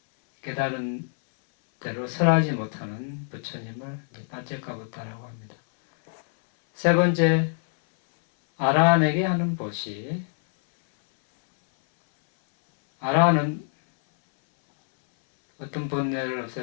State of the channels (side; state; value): right; silent; 62 dB below the other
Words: 깨달은 대로 설하지 못하는 부처님을 빠째까 붓다라고 합니다. 세 번째, 아라한에게 하는 보시. 아라한은 어떤 번뇌를